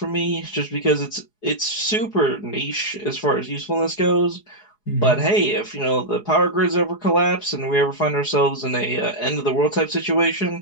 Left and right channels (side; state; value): right; late; 4.8 ms